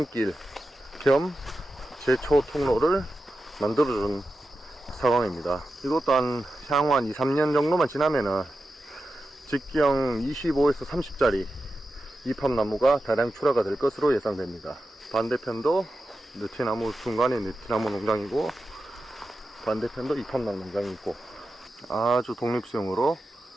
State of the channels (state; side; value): normal; both; correlation 0.91